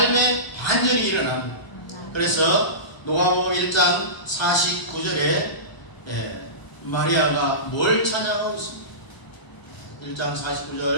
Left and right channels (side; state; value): right; late; 1.0 ms